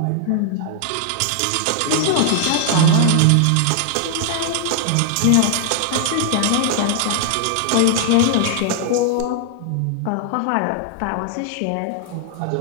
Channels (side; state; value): both; different; correlation -0.01